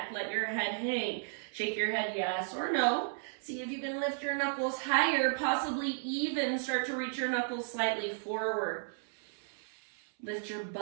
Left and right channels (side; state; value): left; silent; 55 dB below the other